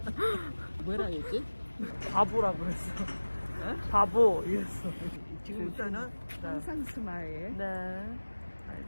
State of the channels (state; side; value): inverted; both; correlation -1.00